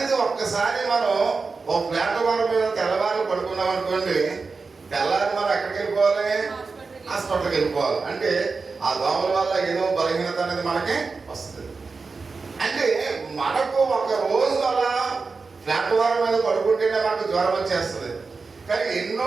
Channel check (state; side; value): quieter; left; 4.4 dB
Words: ఒక్కసారి మనం ఒక ప్లాట్ఫారం మీద తెల్లవారు పడుకున్నాం అనుకోండి, తెల్లారి మనం ఎక్కడికి వెళ్ళిపోవాలి, హాస్పిటల్కి వెళ్ళిపోవాలి. అంటే ఆ దోమల వల్ల ఏదో బలహీనత అనేది మనకి వస్తుంది. అంటే మనకు ఒక రోజు అలా ప్లాట్ఫారం మీద పడుకుంటేనే మనకు జ్వరం వచ్చేస్తుంది. కానీ